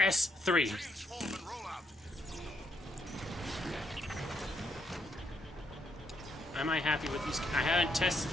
Am I happy with these? I haven't tested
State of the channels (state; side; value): normal; both; correlation 0.75